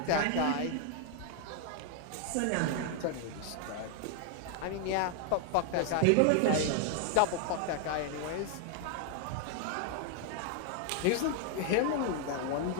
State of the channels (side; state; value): both; different; correlation 0.00